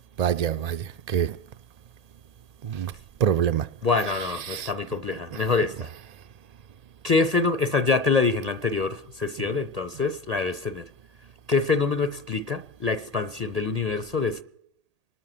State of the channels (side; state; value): left; late; 1.8 ms